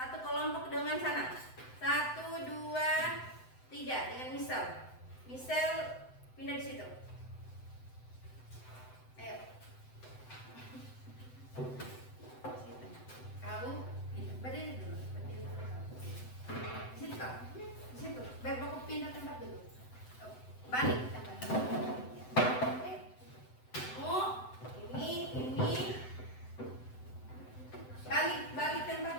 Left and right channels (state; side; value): late; right; 7.9 ms